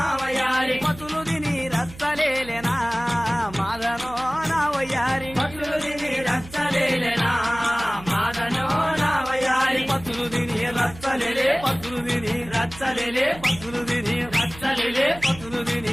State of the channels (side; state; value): right; noise; hum, 17 dB below the sound